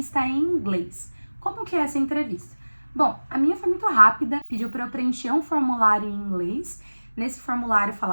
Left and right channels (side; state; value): both; inverted; correlation -1.00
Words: em inglês. Como que é essa entrevista? Bom, a minha foi muito rápida, pediu para eu preencher um formulário em inglês. Nesse formulário